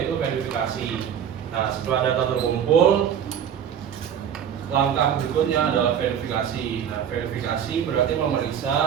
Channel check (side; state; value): left; quieter; 8.7 dB